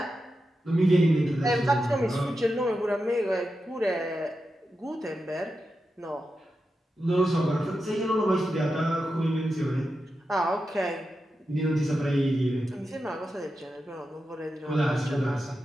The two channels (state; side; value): normal; both; correlation 0.89